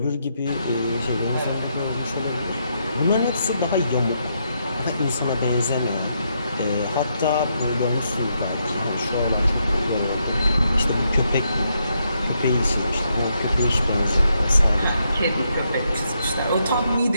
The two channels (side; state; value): both; inverted; correlation -0.79